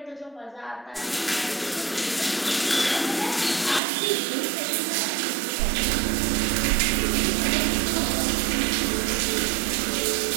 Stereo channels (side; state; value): left; drops out; at 3.8 s